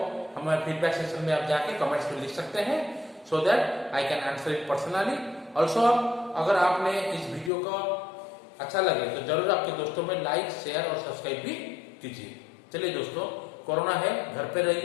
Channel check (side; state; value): right; drops out; at 7.5 s